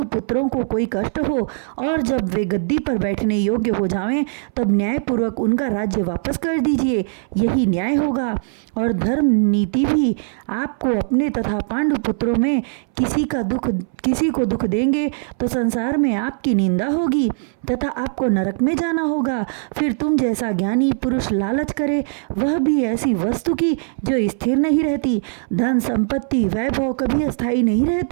पुत्रों को कोई कष्ट हो, और जब वे गद्दी पर बैठने योग्य हो जावें तब न्यायपूर्वक उनका राज्य वापस कर दीजिए। यही न्याय होगा। और धर्म नीति भी आपको अपने तथा पांडु पुत्रों में किसी को दुख देंगे तो संसार में आपकी निंदा होगी तथा आपको नरक में जाना होगा। फिर तुम जैसा ज्ञानी पुरुष लालच करे वह भी ऐसी वस्तु की जो स्थिर नहीं रहती। धन संपत्ति वैभव कभी अस्थायी नहीं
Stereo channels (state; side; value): silent; left; 62 dB below the other